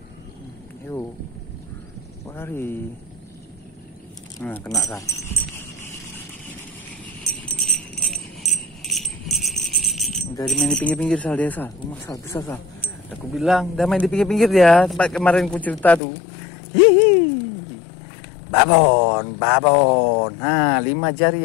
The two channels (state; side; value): drops out; right; at 16.0 s